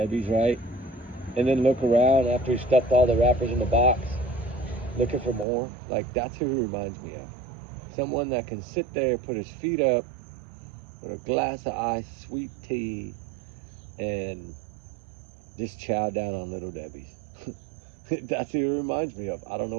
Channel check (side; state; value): left; drops out; at 5.5 s